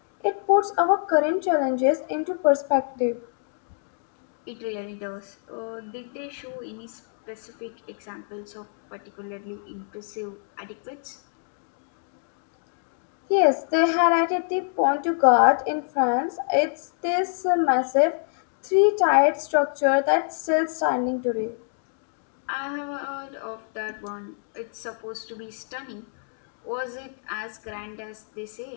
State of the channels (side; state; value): right; silent; 60 dB below the other